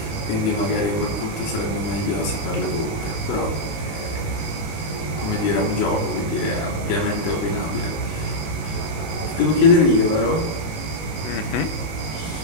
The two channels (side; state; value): right; late; 19 ms